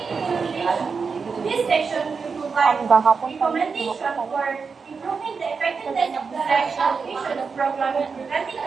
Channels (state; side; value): quieter; left; 5.2 dB